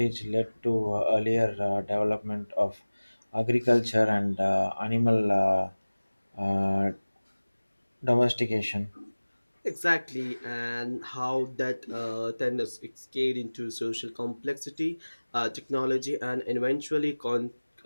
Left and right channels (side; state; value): both; inverted; correlation -1.00